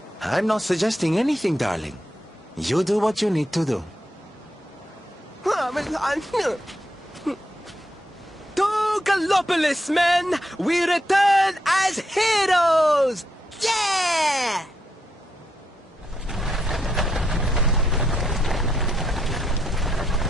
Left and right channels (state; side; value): normal; both; correlation 0.80